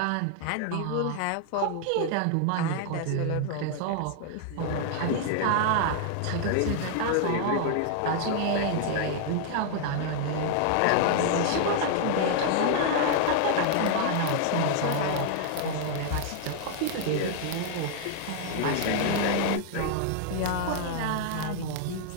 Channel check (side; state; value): both; different; correlation 0.00